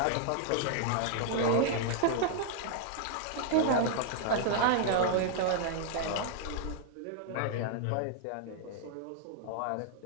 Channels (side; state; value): both; different; correlation 0.00